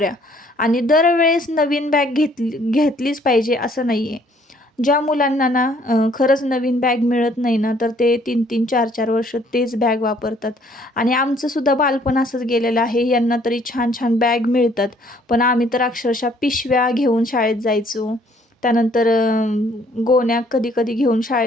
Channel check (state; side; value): normal; both; correlation 0.62